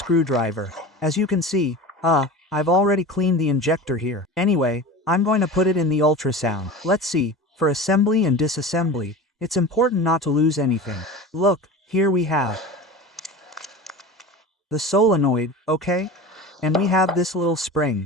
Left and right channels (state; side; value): normal; both; correlation 0.32